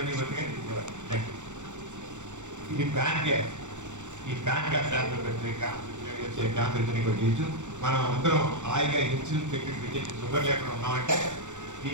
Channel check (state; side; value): late; left; 0.85 ms